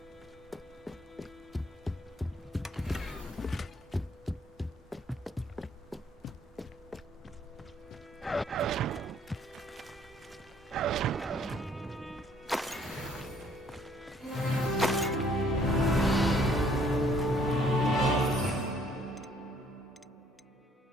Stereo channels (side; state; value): both; normal; correlation 0.63